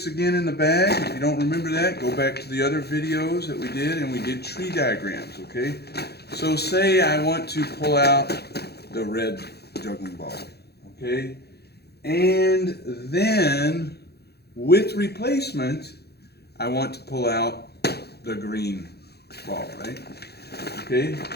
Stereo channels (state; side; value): late; right; 0.47 ms